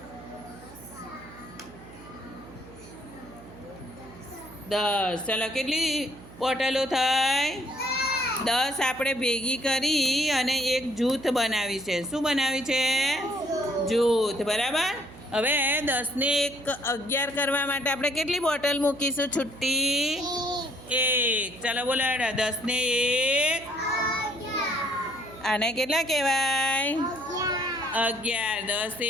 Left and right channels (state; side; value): noise; right; hum, 19 dB below the sound